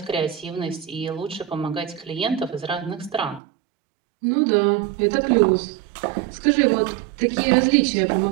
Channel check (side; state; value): left; drops out; at 3.4 s